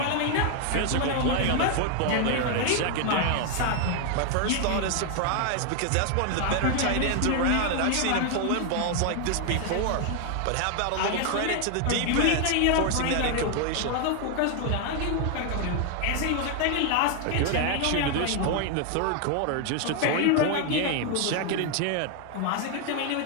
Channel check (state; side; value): different; both; correlation 0.00